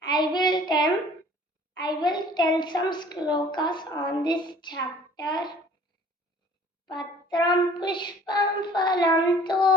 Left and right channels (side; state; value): both; normal; correlation 0.51